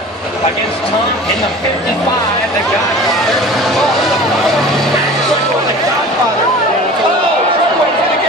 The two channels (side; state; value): both; normal; correlation 0.40